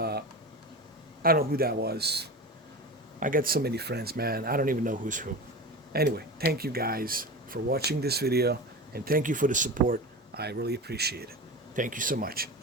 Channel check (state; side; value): normal; both; correlation 0.27